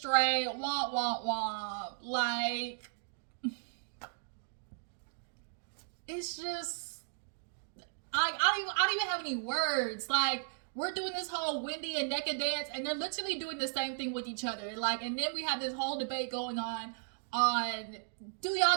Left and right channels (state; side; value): silent; left; digital silence